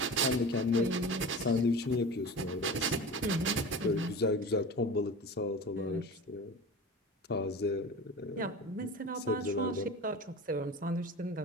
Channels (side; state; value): both; normal; correlation 0.33